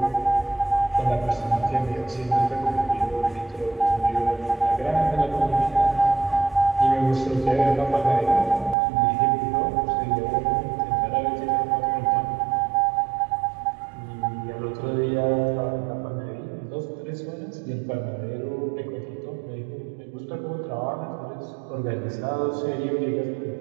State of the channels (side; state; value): left; drops out; at 8.8 s